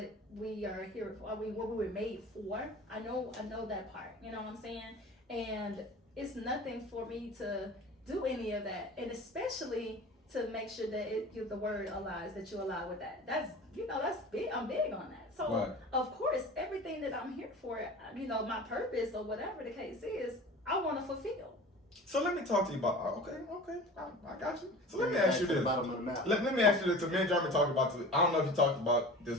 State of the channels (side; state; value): both; normal; correlation 0.38